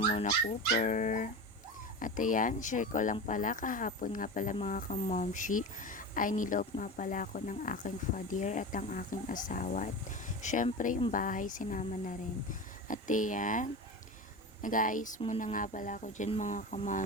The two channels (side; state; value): both; normal; correlation 0.27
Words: muna Cooper. At ayan, share ko lang pala kahapon nga pala mga kamomshi ay niloob nga pala ako ng aking father at ang aking asawa. At syempre yung bahay sinama na rin. At ayan, nag-aayos muna nga pala ako dyan mga